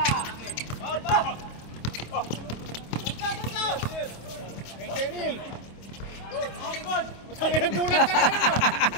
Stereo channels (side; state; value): right; late; 26 ms